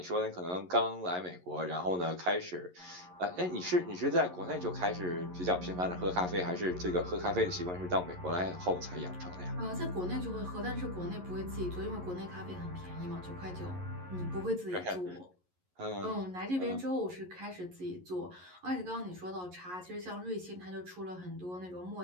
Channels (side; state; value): left; late; 11 ms